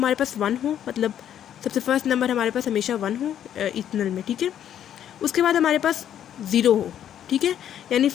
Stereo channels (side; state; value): right; quieter; 10.2 dB